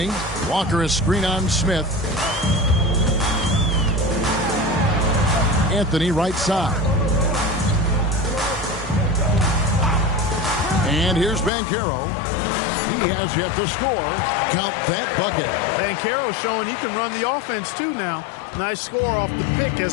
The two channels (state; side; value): drops out; right; at 11.5 s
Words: Walker is screen on Smith. Anthony right side. And here's Banchero. He has yet to score. Count that bucket. Banchero showing he can run the offense too now. Nice score off the pick